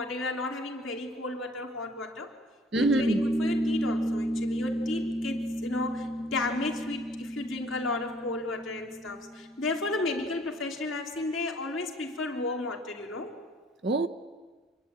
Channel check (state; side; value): normal; both; correlation 0.58